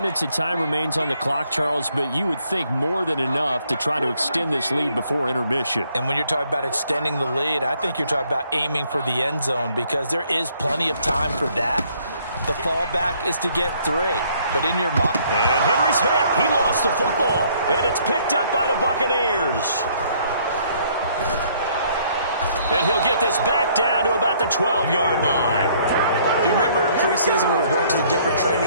of time remains on the clock, Charles, but you would think more than enough to try to extend this lead before intermission. And when you're talking about extending the lead, I think you're talking about aiming for the end zone because there is plenty of time for that. The fallback is to get 3. But in your mind... And Henry's hit. He lost the football. And it's picked up by the Buccaneers. And he'll get this back down to about the 12-yard line. Do you remember in preseason we were going to the different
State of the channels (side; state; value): both; inverted; correlation -0.64